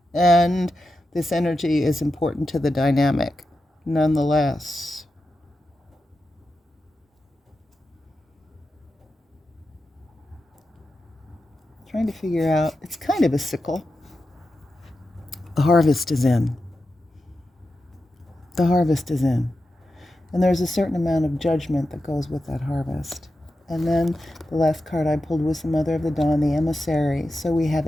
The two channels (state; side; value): normal; both; correlation 0.90